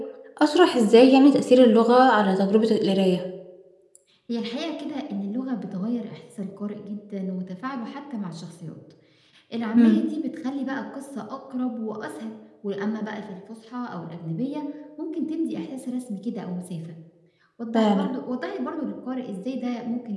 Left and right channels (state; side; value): identical; both; correlation 1.00